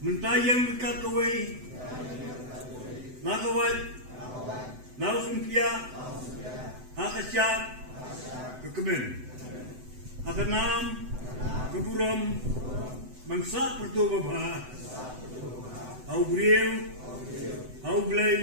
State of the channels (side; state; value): left; late; 7.9 ms